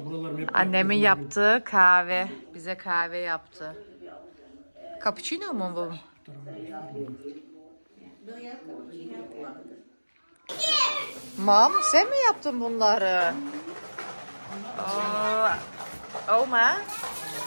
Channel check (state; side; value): inverted; both; correlation -1.00